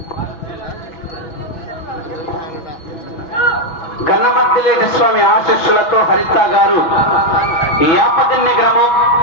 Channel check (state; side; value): late; right; 6.1 ms